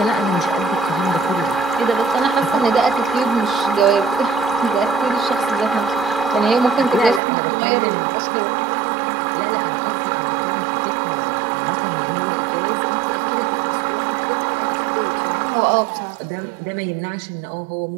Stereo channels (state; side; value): drops out; left; at 7.2 s